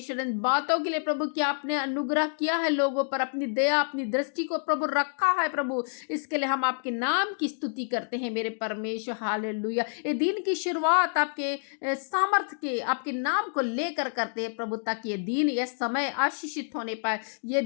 इन बातों के लिए प्रभु, कि आपने अनुग्रह किया है लोगों पर, अपनी दया अपनी दृष्टि को प्रभु रखा है प्रभु। इसके लिए हम आपके नाम की स्तुति करते हैं मेरे परमेश्वर। हालेलुया। ये दिन की शुरुआत आपके सामर्थ के, आपके नाम को लेकर करते हैं प्रभु, ताकि ये दिन, ये समय आशीषित होने पाए। ये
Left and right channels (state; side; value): silent; right; digital silence